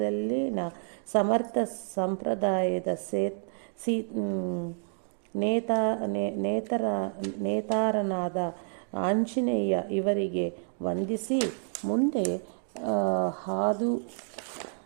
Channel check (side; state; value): left; silent; 58 dB below the other